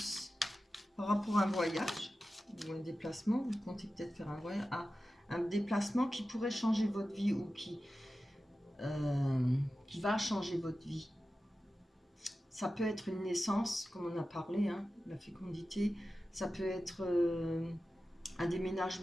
Par rapport à un voyage ou un déplacement, vous comptez peut-être faire un voyage. Ah, un déplacement qui pourrait changer votre vie ou qui va changer votre vie. Ça peut être une naissance, comme on a parlé, hein, la fécondité. Ça peut être un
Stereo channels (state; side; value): normal; both; correlation 0.93